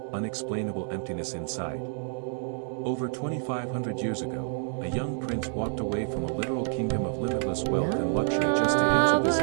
unexplainable emptiness inside? Over 2,500 years ago, a young prince walked away from a literal kingdom of limitless wealth and luxury just to answer this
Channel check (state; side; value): silent; left; 59 dB below the other